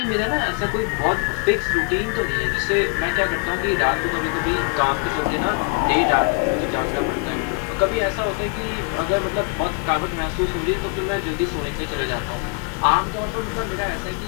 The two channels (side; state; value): right; quieter; 34.6 dB